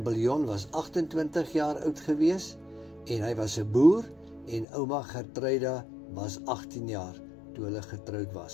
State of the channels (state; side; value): drops out; right; at 4.7 s